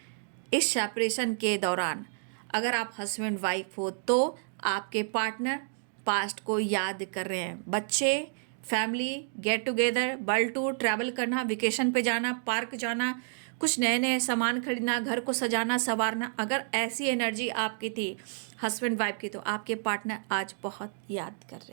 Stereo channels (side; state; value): left; silent; digital silence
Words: इस सेपरेशन के दौरान अगर आप हस्बैंड वाइफ हो तो आपके पार्टनर पास्ट को याद कर रहे हैं। बच्चे, family, get together, world tour, travel करना, वेकेशन पे जाना, पार्क जाना, कुछ नए नए सामान खरीदना, घर को सजाना संवारना, अगर ऐसी एनर्जी आपकी थी हस्बैंड वाइफ की, तो आपके पार्टनर आज बहुत याद कर